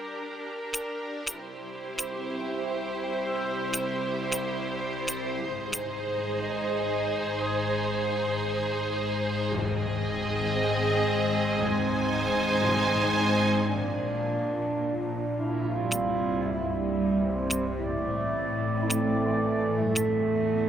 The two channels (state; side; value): normal; both; correlation 0.77